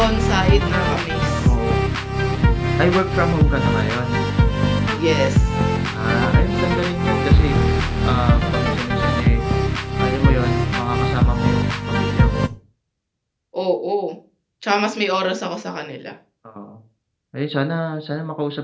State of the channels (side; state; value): both; identical; correlation 1.00